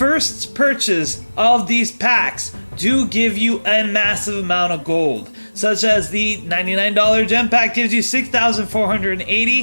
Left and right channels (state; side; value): inverted; both; correlation -1.00